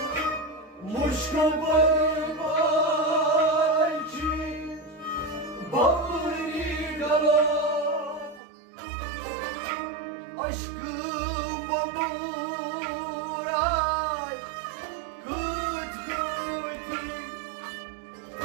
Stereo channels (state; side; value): drops out; left; at 8.4 s